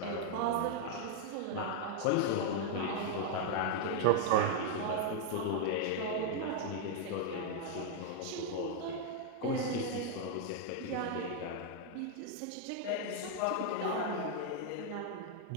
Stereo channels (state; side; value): different; both; correlation 0.00